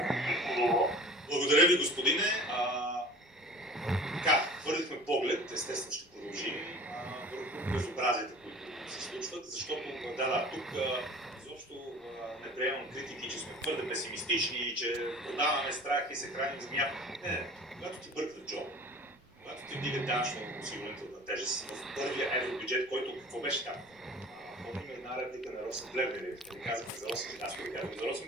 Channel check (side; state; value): both; normal; correlation 0.43